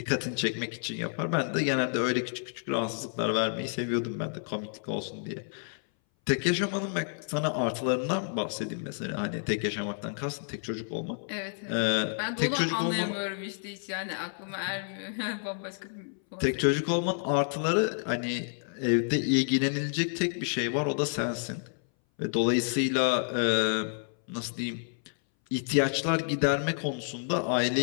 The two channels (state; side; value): silent; right; 58 dB below the other